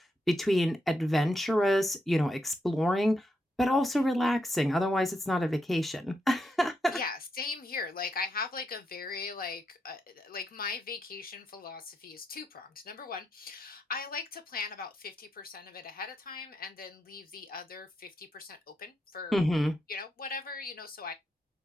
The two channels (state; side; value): normal; both; correlation 0.82